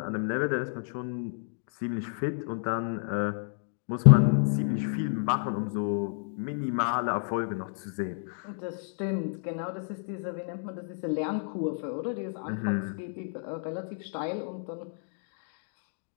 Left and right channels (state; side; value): silent; right; digital silence